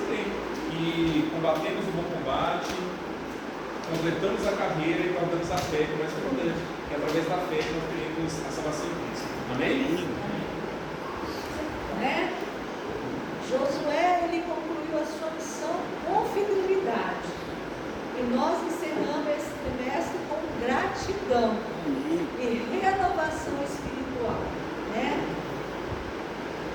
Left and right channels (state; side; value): identical; both; correlation 1.00